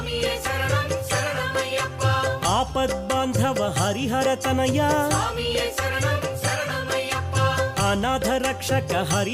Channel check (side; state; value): both; identical; correlation 1.00